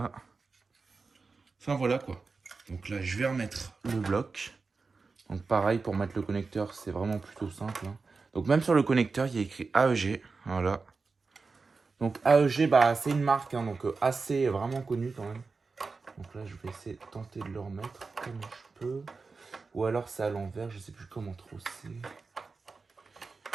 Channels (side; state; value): left; quieter; 4.3 dB